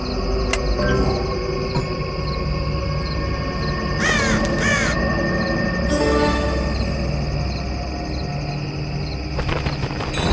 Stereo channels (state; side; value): identical; both; correlation 1.00